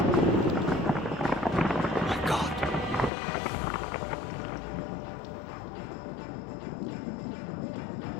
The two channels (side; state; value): right; drops out; at 3.1 s